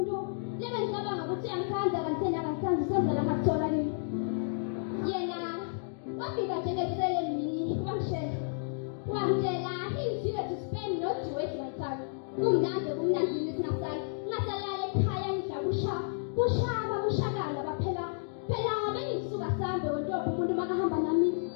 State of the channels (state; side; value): silent; right; digital silence